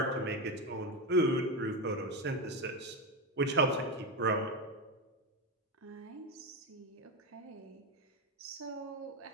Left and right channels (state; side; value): normal; both; correlation 0.13